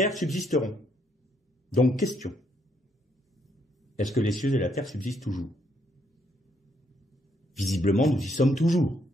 subsisteront. Donc question. Est-ce que les cieux et la terre subsistent toujours? Visiblement, nous y sommes toujours.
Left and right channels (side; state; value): both; normal; correlation 0.73